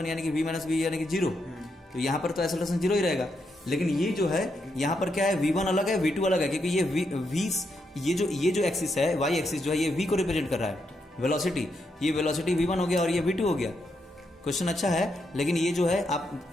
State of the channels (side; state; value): both; normal; correlation 0.81